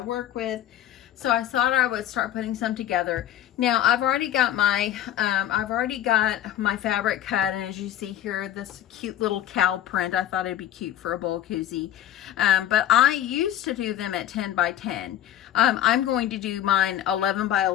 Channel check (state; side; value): quieter; right; 11.6 dB